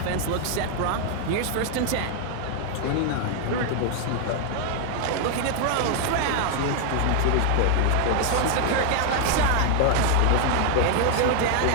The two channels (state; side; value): different; both; correlation 0.00